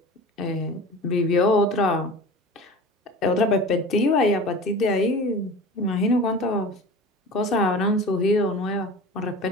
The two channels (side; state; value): both; normal; correlation 0.36